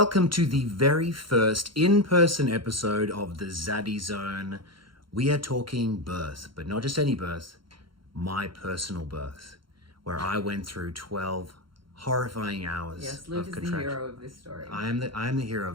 to the very first in-person episode of the Zaddy Zone. We are talking birth, but not just any birth, my personal birth, where I went through 12 horrifying hours Yes, Luke of is contraction. the hero of this story. I am the hero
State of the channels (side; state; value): left; late; 0.73 ms